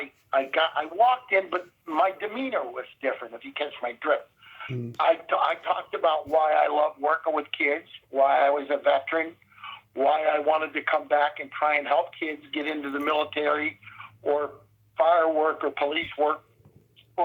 I walked in, but my demeanor was different, if you catch my drift. Mm-hmm. I talked about why I love working with kids, why I was a veteran, why I wanted to come back and try and help kids get into the military or fire work or police work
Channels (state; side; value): identical; both; correlation 1.00